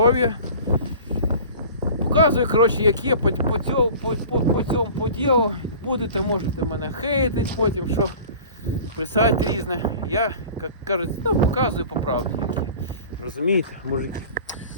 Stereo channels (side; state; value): both; inverted; correlation -0.42